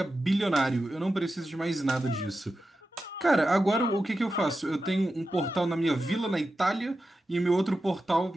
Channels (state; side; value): normal; both; correlation 0.91